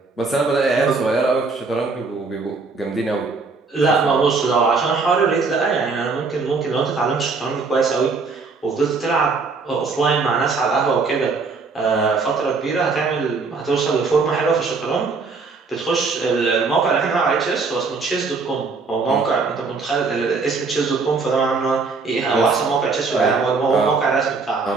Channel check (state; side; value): quieter; left; 4.4 dB